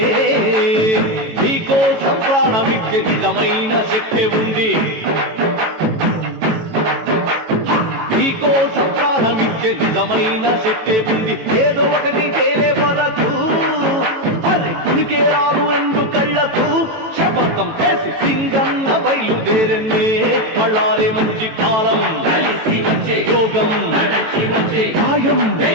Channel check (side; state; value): left; late; 18 ms